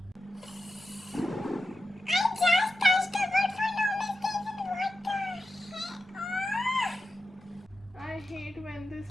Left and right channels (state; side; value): normal; both; correlation 0.91